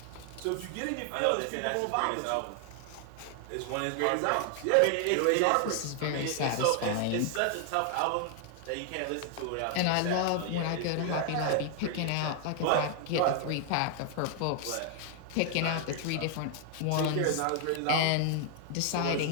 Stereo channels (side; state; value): both; different; correlation 0.00